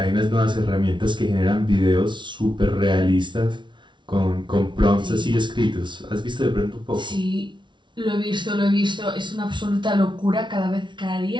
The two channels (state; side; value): late; left; 0.23 ms